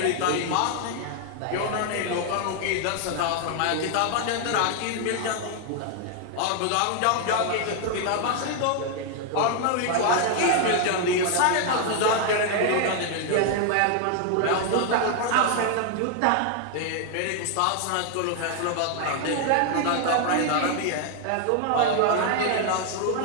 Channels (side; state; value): both; different; correlation 0.00